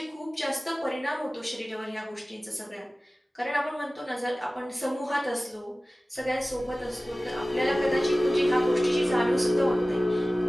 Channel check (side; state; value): both; normal; correlation 0.97